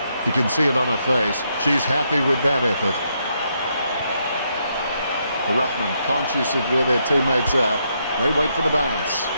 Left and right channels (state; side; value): inverted; both; correlation -0.77